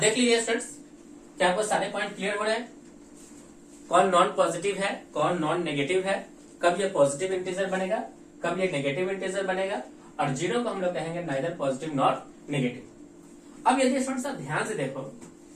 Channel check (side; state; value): both; identical; correlation 1.00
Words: लीजिए स्टूडेंट्स, क्या आपको सारे पॉइंट क्लियर हो रहे हैं? कौन नॉन पॉजिटिव है, कौन नॉन नेगेटिव है, कब ये पॉजिटिव इंटीजर बनेगा, कब ये नेगेटिव इंटीजर बनेगा, और जीरो को हम लोग कहेंगे नाइदर पॉजिटिव नॉट नेगेटिव। अब यदि स्टूडेंट्स आप ध्यान से देखो